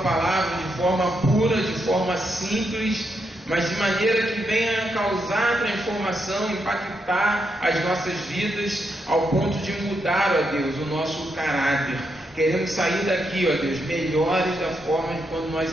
de forma pura, de forma simples, mas de maneira que venha causar transformação, impactar as nossas vidas, ao ponto de mudar, ó Deus, o nosso caráter. Queremos sair daqui, ó Deus, melhores da forma de quando nós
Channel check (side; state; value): both; normal; correlation 0.81